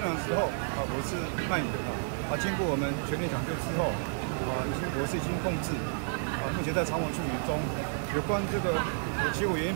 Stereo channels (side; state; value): left; silent; digital silence